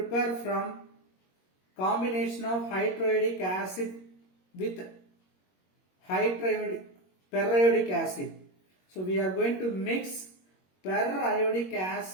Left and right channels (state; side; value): late; right; 21 ms